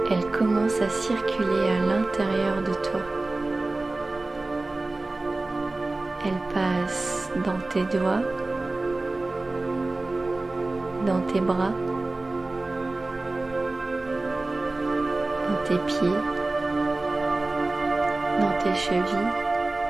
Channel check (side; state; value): left; quieter; 3.1 dB